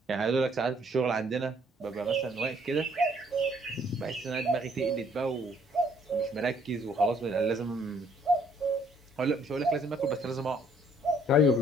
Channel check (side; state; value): both; normal; correlation 0.64